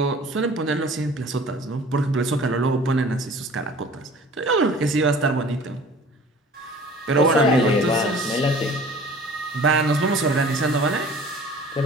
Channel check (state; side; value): normal; both; correlation 0.46